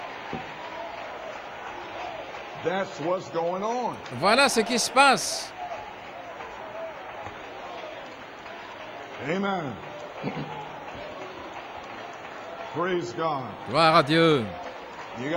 Voilà ce qui se passe. Amen. Praise God. Gloire à Dieu. You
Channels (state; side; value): identical; both; correlation 1.00